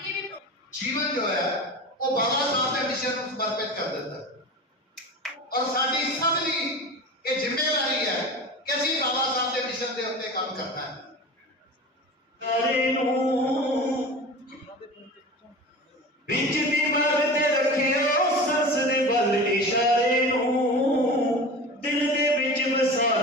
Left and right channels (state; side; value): normal; both; correlation 0.33